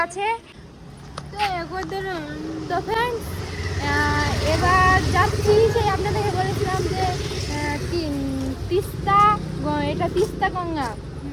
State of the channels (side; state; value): both; identical; correlation 1.00